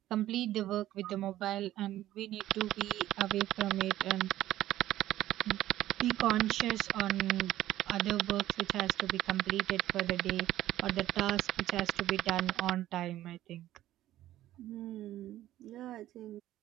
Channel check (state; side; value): quieter; left; 13.9 dB